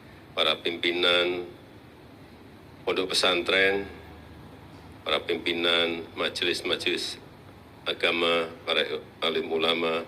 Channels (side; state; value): both; identical; correlation 1.00